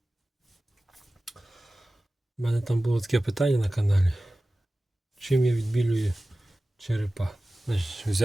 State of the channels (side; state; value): both; normal; correlation 0.96